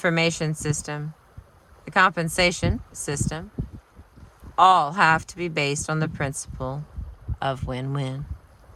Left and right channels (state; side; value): identical; both; correlation 1.00